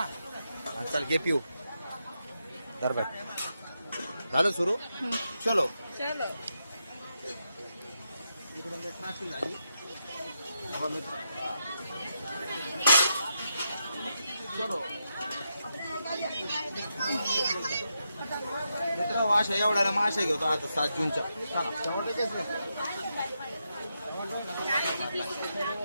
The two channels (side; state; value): both; inverted; correlation -0.84